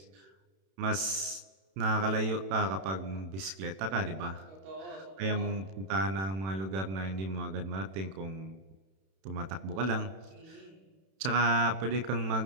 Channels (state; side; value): late; left; 31 ms